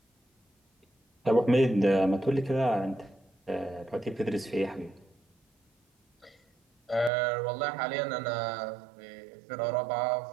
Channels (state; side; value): drops out; left; at 7.1 s